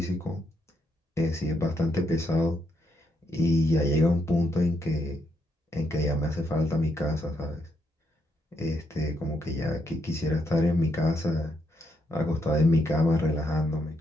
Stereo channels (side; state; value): both; normal; correlation 0.77